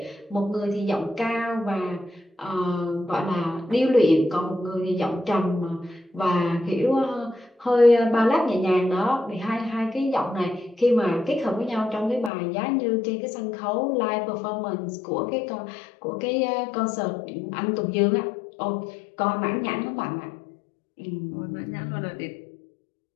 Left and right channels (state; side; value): drops out; right; at 12.3 s